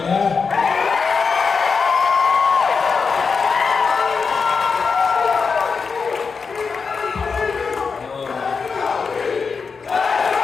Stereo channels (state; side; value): quieter; right; 5.2 dB